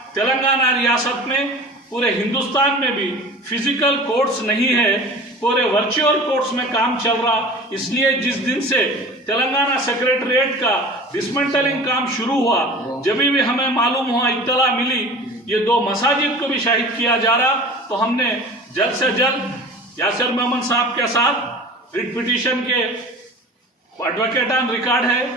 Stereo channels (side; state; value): both; normal; correlation 0.39